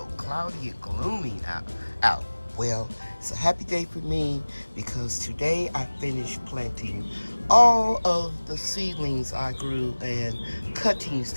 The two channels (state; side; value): inverted; both; correlation -1.00